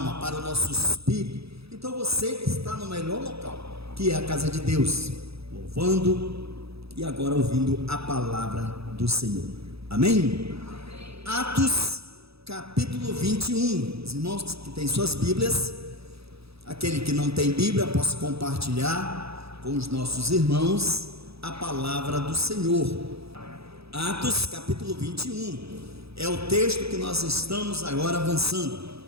para o nosso espírito. Então você está no melhor local, que é a casa de Deus, louvando e agora ouvindo a palavra do Senhor. Amém? Atos capítulo 21. Os irmãos que têm suas Bíblias, aquele que não tem Bíblia, possa compartilhar com os nossos irmãos a palavra do Senhor. Atos capítulo 21 é o texto que nós estamos agora avançando.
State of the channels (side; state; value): left; late; 0.78 ms